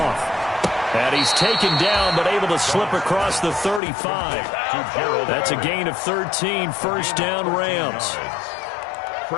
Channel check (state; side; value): drops out; right; at 3.8 s